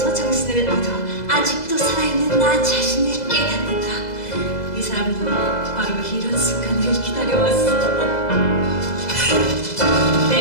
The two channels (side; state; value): right; late; 2.0 ms